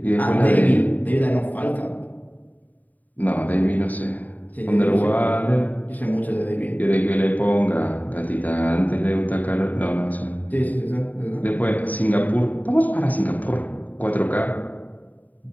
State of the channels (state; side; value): late; right; 0.078 ms